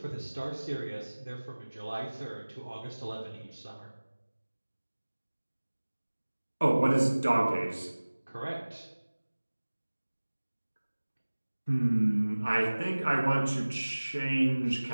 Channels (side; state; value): both; inverted; correlation -1.00